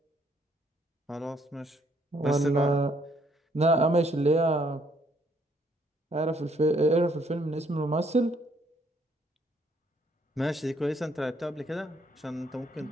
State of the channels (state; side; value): normal; both; correlation 0.68